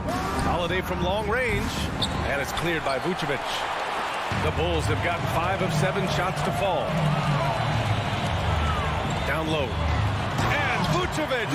Holiday from long range, and it's cleared by Vucevic. The Bulls have gotten 5 of 7 shots to fall. Down low. And Vucevic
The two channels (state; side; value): identical; both; correlation 1.00